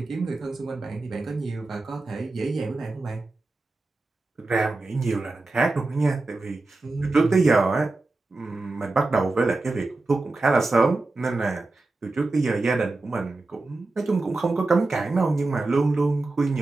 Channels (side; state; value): left; quieter; 3.3 dB